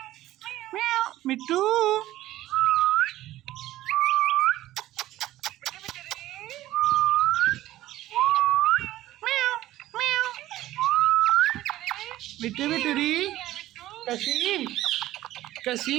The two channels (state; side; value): quieter; left; 15.1 dB